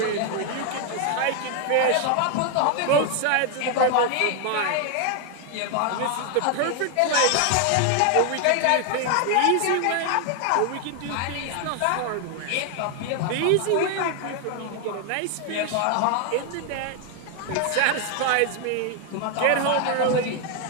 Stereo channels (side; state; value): both; different; correlation 0.00